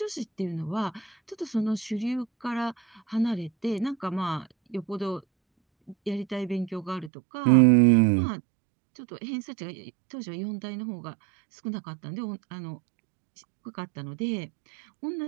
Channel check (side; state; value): left; drops out; at 7.1 s